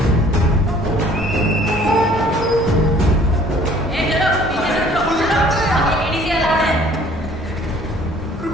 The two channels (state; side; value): normal; both; correlation 0.55